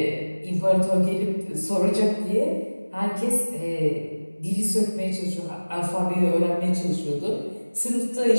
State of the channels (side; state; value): both; inverted; correlation -1.00